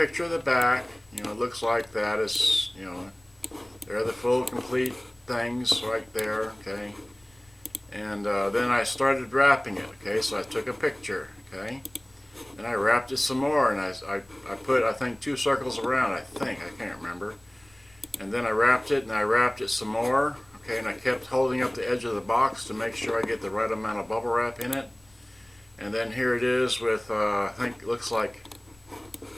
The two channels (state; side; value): noise; left; rumble, 30 dB below the sound